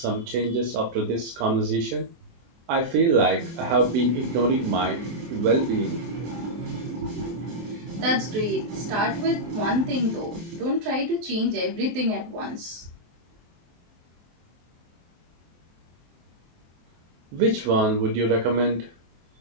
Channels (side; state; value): left; late; 23 ms